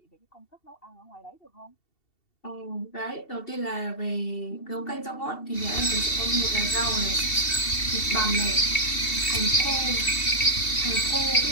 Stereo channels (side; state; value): right; late; 2.7 ms